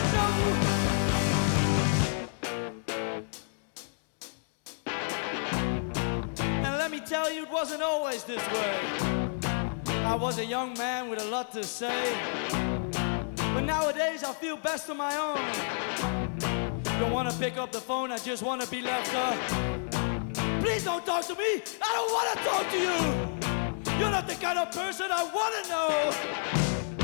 Tell you it wasn't always this way. I was a young man with a lot to say, but nowadays I feel best on my own. Don't want to pick up the phone, I just want to be left up. Please don't talk to me, I don't want to talk to you. You're not the kind of person I want to know.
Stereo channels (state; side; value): silent; right; digital silence